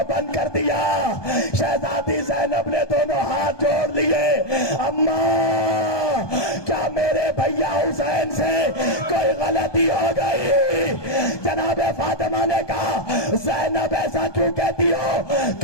بند کر دیا۔ شہزادی زینب نے دونوں ہاتھ جوڑ لیے، اماں کیا میرے بھیا حسین سے کوئی غلطی ہو گئی؟ جناب فاطمہ نے کہا زینب ایسا کیوں کہتی ہو؟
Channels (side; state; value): right; late; 1.2 ms